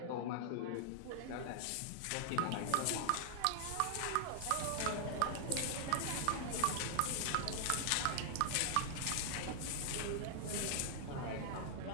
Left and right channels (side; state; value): both; different; correlation 0.00